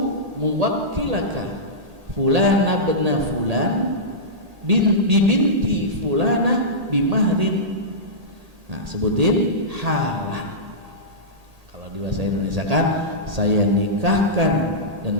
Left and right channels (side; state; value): left; late; 1.8 ms